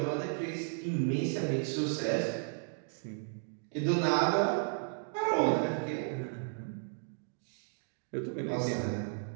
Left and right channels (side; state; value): left; silent; 55 dB below the other